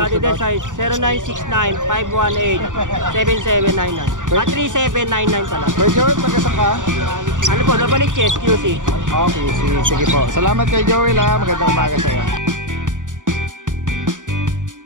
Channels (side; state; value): left; late; 0.87 ms